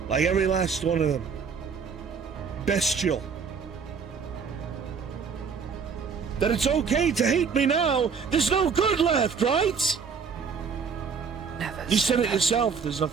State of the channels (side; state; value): left; quieter; 5.9 dB